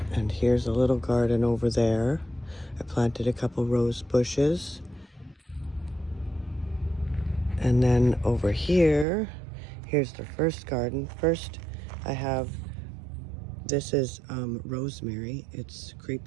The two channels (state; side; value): drops out; left; at 9.1 s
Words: And here's a little garden over there. I planted a couple rose bushes. And then over here, here's the first garden. First, I have, this is rosemary. It's